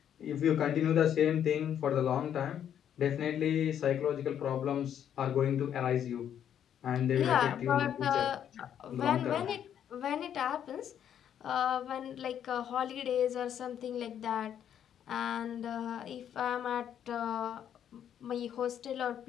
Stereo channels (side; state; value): right; quieter; 9.5 dB